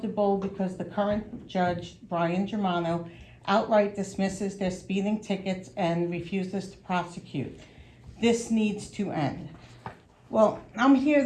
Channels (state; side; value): identical; both; correlation 1.00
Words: because the current judge, Brian Germano, outright dismisses their speeding tickets and refuses to prosecute. This needs to end. Well, I'm here